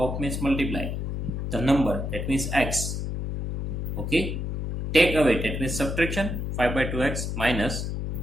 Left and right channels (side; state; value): left; noise; hum, 3 dB below the sound